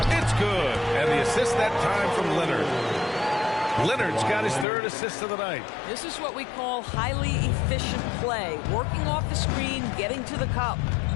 It's good. And the assist that time from Leonard. Leonard's got his 3rd assist of the night. This is what we call highly efficient play. Working off the screen, getting to the cup.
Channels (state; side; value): drops out; right; at 4.7 s